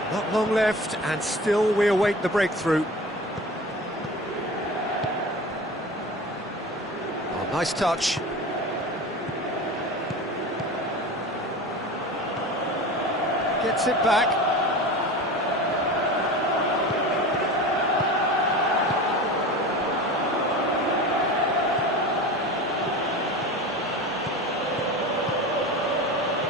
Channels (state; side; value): normal; both; correlation 0.33